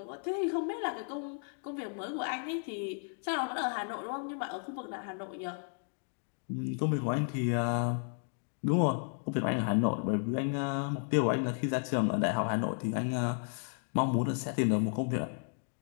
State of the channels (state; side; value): silent; right; 55 dB below the other